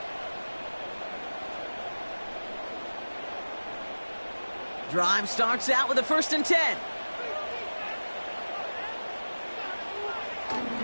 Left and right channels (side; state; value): both; inverted; correlation -1.00